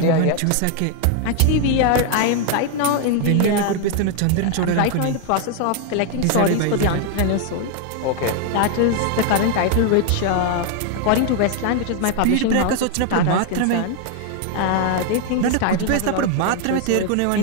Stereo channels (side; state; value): both; different; correlation 0.00